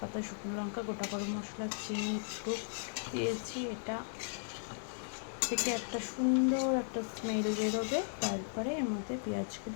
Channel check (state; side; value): silent; right; digital silence